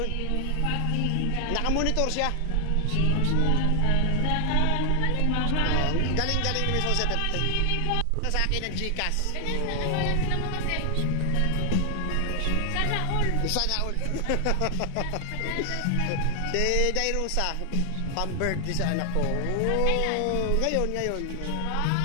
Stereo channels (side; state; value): both; different; correlation 0.00